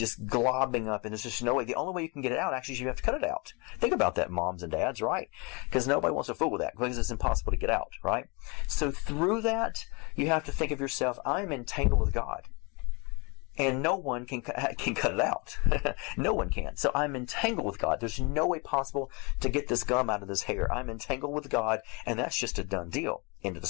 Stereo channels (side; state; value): right; quieter; 30.1 dB